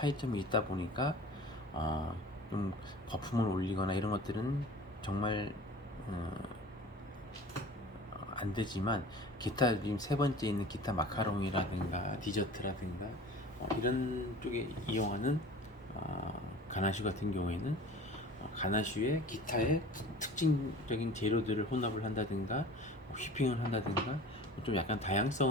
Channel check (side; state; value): both; normal; correlation 0.42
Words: 있다 보니까 좀 거품을 올리거나 이런 것들은 정말 안 되지만, 기타 지금 세 번째 있는 기타 마카롱이라든가 디저트라든가 이런 쪽에 이용하는 가나슈 같은 경우에는 가나슈에 기타의 특징적인 재료들을 혼합을 한다든가 휘핑을 한다든가 좀 약간